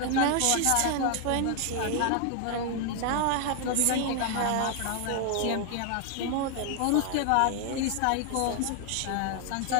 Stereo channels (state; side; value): different; both; correlation 0.00